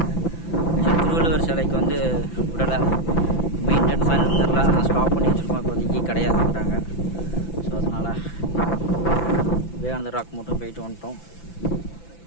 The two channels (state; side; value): late; right; 5.9 ms